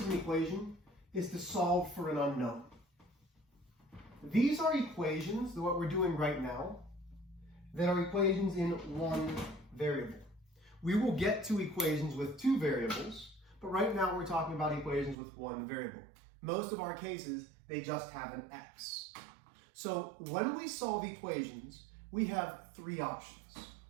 of an equation is to solve for an unknown. These are equations, what we're doing right now, that are equations in one variable. We will get to equations with two variables, but but right now we're talking about equations with one variable. Most of our cases, they just have an x. So when we solve equations, we have three options.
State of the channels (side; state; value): left; drops out; at 15.2 s